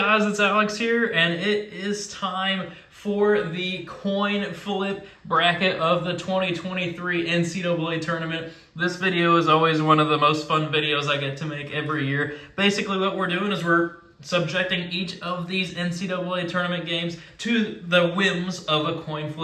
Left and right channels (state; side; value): identical; both; correlation 1.00